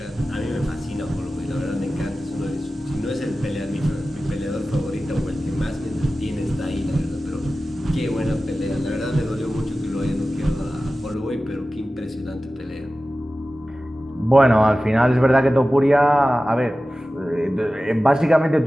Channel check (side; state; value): both; normal; correlation 0.95